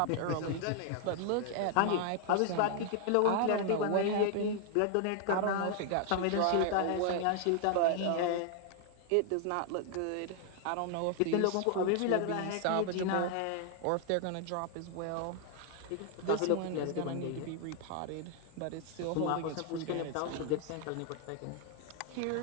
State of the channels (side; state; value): both; different; correlation 0.00